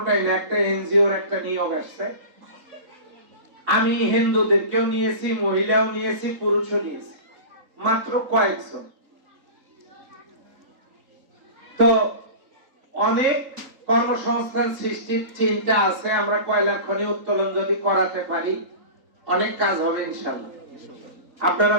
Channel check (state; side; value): late; left; 3.8 ms